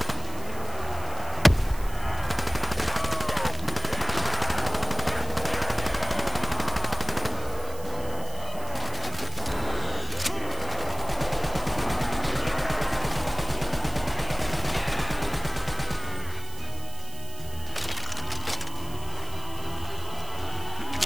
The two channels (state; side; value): noise; right; hiss, 15 dB below the sound